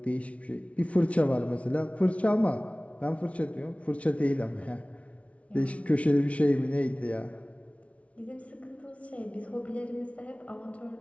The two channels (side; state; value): right; late; 0.064 ms